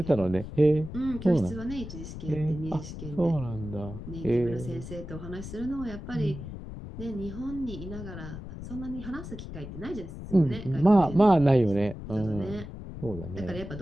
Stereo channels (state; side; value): noise; left; rumble, 10 dB below the sound